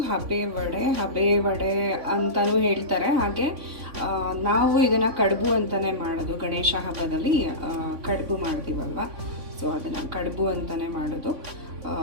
ಹಬೆ ವಡೆ ಅಂತಲೂ ಹೇಳ್ತಾರೆ. ಹಾಗೆ ನಾವು ಇದನ್ನು ಕಡುಬು ಅಂತಲೇ ಮಾಡೋದು. ಗಣೇಶ ಹಬ್ಬದಲ್ಲಿ ಕಡುಬು ಮಾಡ್ತೀವಲ್ವ, ಸೊ ಅದನ್ನು ಕಡುಬು ಅಂತಲೇ ಮಾಡೋದು.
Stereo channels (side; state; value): left; late; 3.5 ms